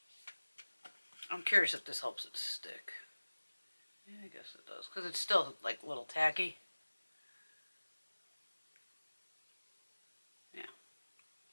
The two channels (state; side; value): inverted; both; correlation -1.00